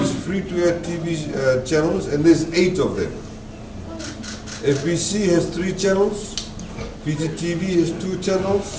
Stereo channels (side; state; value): both; identical; correlation 1.00